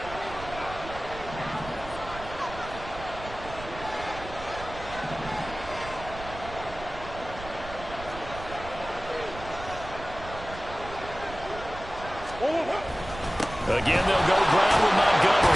Again, they'll go ground with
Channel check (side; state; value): right; noise; rumble, 13 dB below the sound